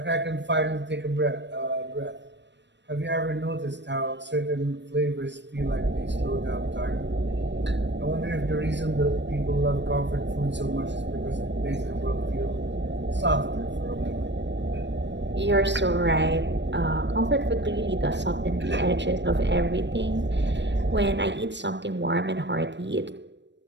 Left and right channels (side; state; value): left; late; 0.52 ms